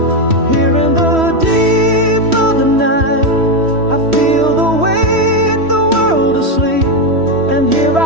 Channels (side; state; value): left; late; 3.1 ms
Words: Here in the deep of the night, I feel the weight, the world asleep. And here